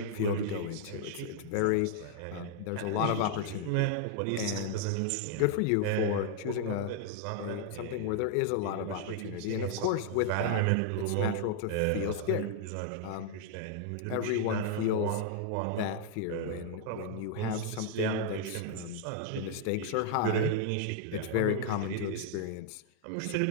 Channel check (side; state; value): both; different; correlation -0.01